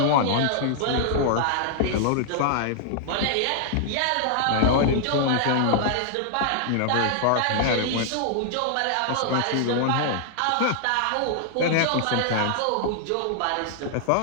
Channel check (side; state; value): both; different; correlation -0.01